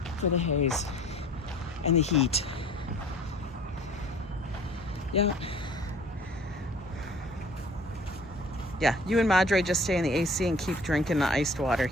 for the haze and the heat. Yeah. Yeah, you and Madre just stay in the AC and keep drinking the iced water.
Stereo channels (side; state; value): both; normal; correlation 0.50